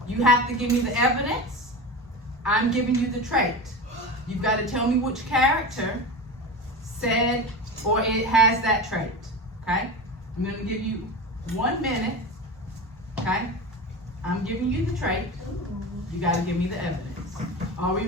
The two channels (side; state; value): both; normal; correlation 0.27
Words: You have to give me the evidence, I'm giving you the trait. You've got to tell me which character said or it has that trait. Okay? I'm going to give you 1 minute. Okay? I'm giving you the trait. You got to give me the evidence. Are we